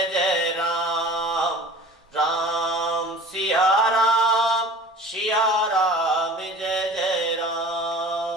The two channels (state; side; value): normal; both; correlation 0.42